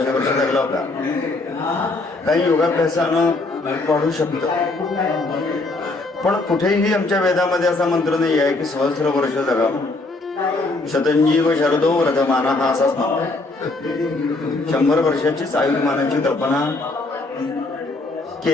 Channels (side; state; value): right; quieter; 3.1 dB